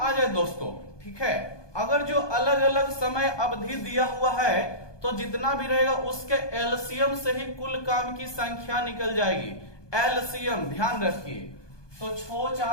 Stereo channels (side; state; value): right; late; 1.2 ms